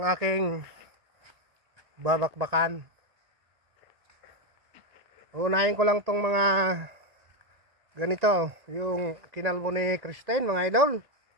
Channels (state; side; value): late; left; 1.9 ms